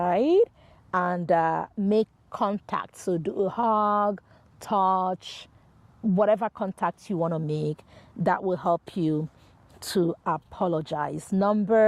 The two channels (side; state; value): both; identical; correlation 1.00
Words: And make contact. So do a hug, touch, whatever contact you want to make that will help you to apologize.